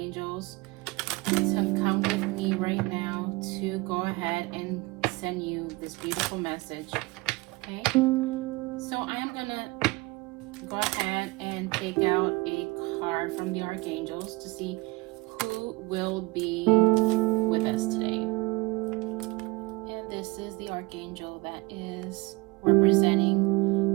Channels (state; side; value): quieter; left; 23.5 dB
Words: to come with me right now to go ahead and send you this beautiful message. Okay, so I'm gonna go ahead and take out a card from the archangels to see who will be with us today. And this is the archangel that is representing